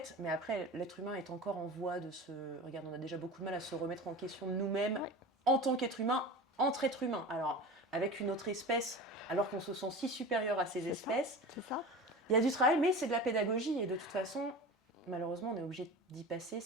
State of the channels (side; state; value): both; normal; correlation 0.33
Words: mais après, l'être humain est encore en voie de se... Regarde, on a déjà beaucoup de mal à se remettre en question de nous-mêmes en tant qu'être humain, entre êtres humains. Alors, avec une autre espèce, alors qu'on se sent si supérieur à ces espèces, C'est ça. il y a du travail, mais c'est de la pédagogie. Et de toute façon, malheureusement, on est obligé d'y passer